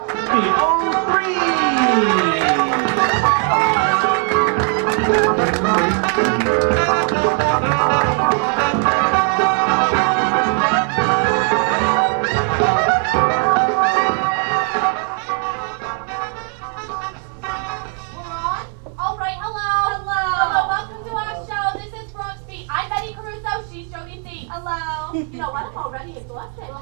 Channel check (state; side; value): quieter; left; 38.0 dB